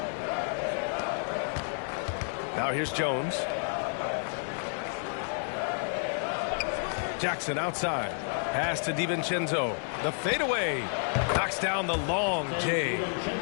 Now here's Jones. Jackson outside. Pass to DiVincenzo. The fadeaway. Knocks down the long J.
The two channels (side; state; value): right; silent; 58 dB below the other